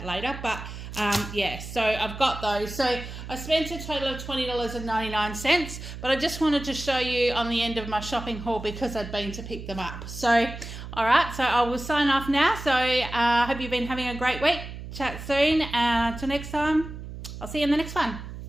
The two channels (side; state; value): right; noise; hum, 10 dB below the sound